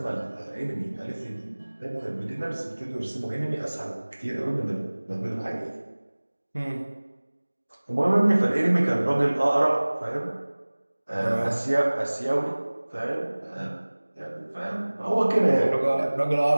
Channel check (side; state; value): both; inverted; correlation -1.00